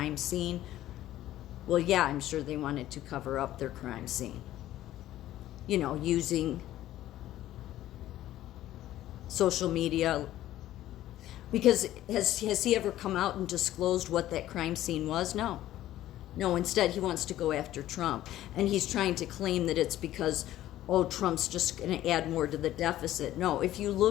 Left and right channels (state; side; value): quieter; right; 13.8 dB